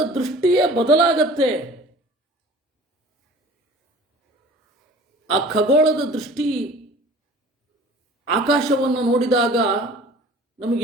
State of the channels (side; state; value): both; normal; correlation 0.45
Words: ದೃಷ್ಟಿಯೇ ಬದಲಾಗತ್ತೆ. ಆ ಖಗೋಳದ ದೃಷ್ಟಿ ಆಕಾಶವನ್ನು ನೋಡಿದಾಗ